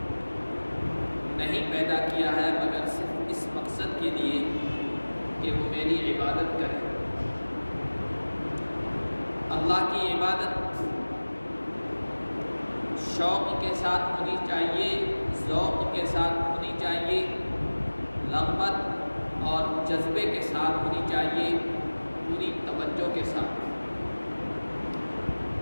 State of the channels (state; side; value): inverted; both; correlation -1.00